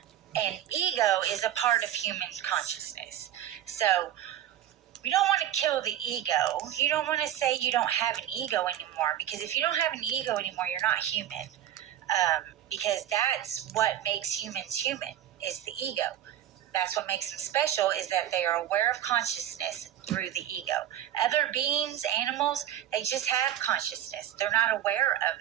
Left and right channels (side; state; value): left; quieter; 11.5 dB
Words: And ego is a part of human consciousness. So we don't want to kill the ego. You don't want to say you don't have an ego anymore, because if you don't have an ego anymore, you're not human. Because that's what makes humans human, is the ego. That's what makes them special, is that they are aware of consciousness through the ego. Other beings, animals, they just have consciousness. They're not aware of